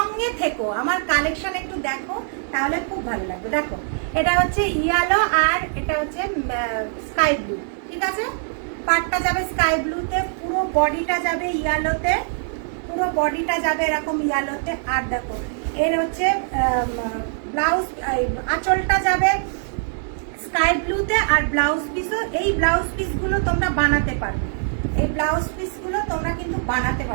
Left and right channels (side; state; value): left; silent; 64 dB below the other